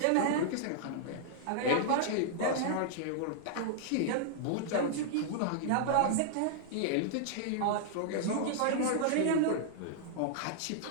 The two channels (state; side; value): different; both; correlation -0.01